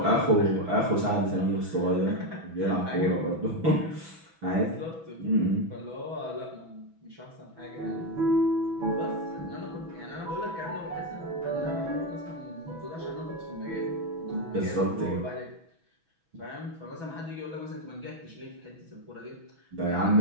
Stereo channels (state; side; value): late; left; 6.1 ms